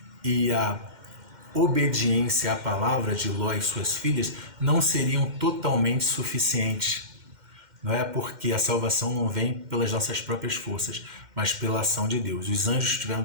e a obediência à palavra de Ló e suas filhas não seriam totalmente suficientes. Não é porque a salvação não vem pelas nossas próprias forças, mas pela ação de Deus. Os anjos tiveram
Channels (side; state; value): left; late; 2.1 ms